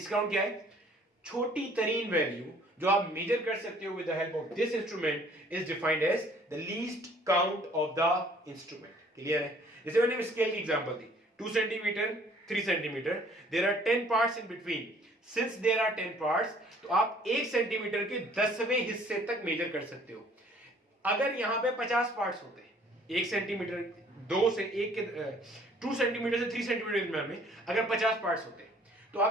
काउंट क्या है, छोटी तरीन वैल्यू जो आप मेजर कर सकते हो with the help of this instrument is defined as the least count of the instrument. Clear है। जैसे मैंने स्केल की एग्जांपल दी, 2 centimetre, 3 centimetre, there are 10 parts in between. Since there are 10 parts, तो आप 1 सेंटीमीटर के 10वें हिस्से तक मेजर कर सकते हो। अगर यहां पे 50 पार्ट्स होते हैं, 1 सेंटीमीटर 2 से 1 के 2 सेंटीमीटर से 3 सेंटीमीटर में अगर 50 पार्ट्स होते हैं, तो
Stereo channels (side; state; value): both; normal; correlation 0.57